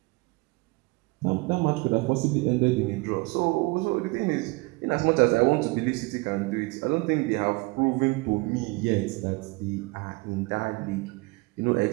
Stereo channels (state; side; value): quieter; left; 26.0 dB